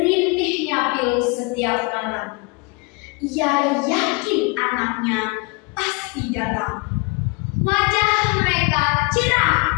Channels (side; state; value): right; quieter; 28.3 dB